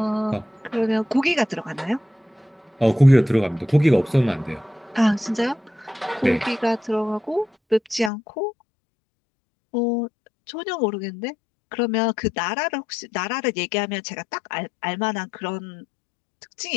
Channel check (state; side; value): drops out; right; at 8.1 s